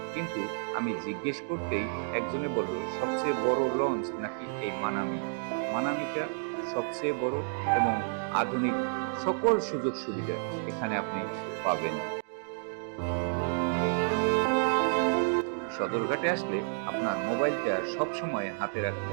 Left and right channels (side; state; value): left; silent; digital silence